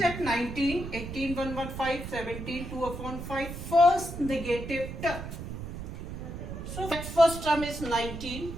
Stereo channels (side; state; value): right; noise; rumble, 8 dB below the sound